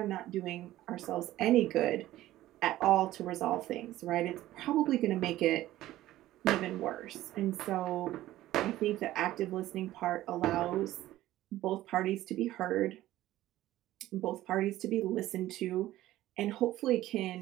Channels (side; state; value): left; quieter; 15.0 dB